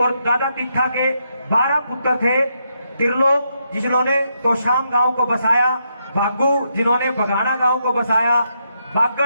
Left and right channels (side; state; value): both; inverted; correlation -0.80